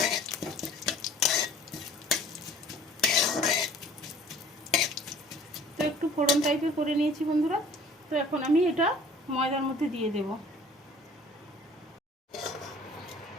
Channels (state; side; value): normal; both; correlation 0.50